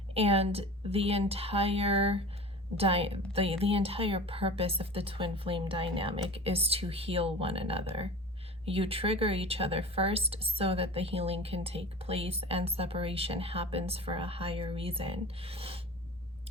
and the entire purpose of the twin flame dynamic is to heal one another. You trigger each other first so that the healing can take place and separation happens for a higher reason.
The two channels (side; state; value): both; normal; correlation 0.35